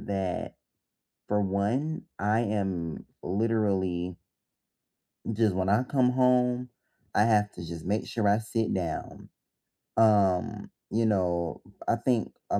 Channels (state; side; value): identical; both; correlation 1.00